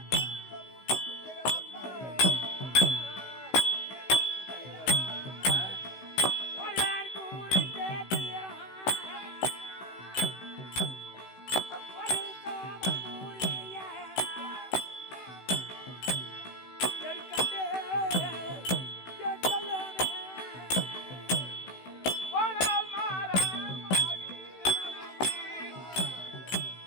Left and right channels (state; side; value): late; right; 16 ms